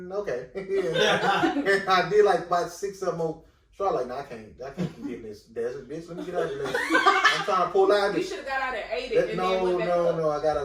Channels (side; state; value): both; identical; correlation 1.00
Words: okay. And I did like about 6 of them more. So I was like, nah, I can't keep getting this desert, bitch. Let me get out of here. I'm trying to pull out You this. should have got out at 80 and then went back up. No, I got